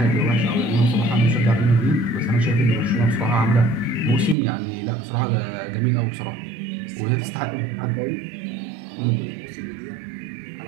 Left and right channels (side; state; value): left; drops out; at 4.4 s